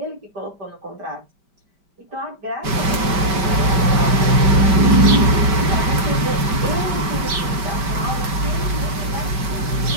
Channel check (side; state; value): left; late; 5.3 ms